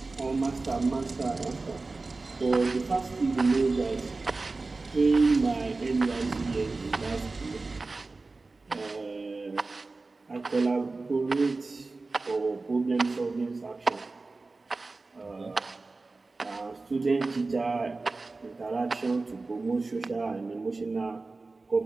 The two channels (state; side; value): quieter; left; 3.6 dB